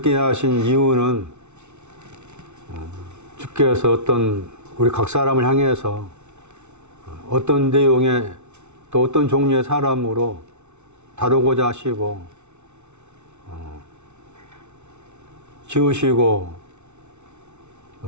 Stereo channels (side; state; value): left; late; 0.82 ms